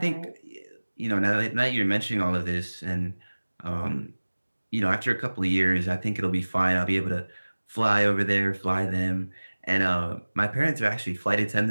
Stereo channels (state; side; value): inverted; both; correlation -1.00